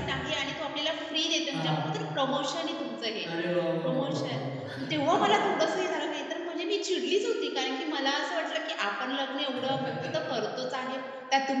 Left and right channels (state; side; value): identical; both; correlation 1.00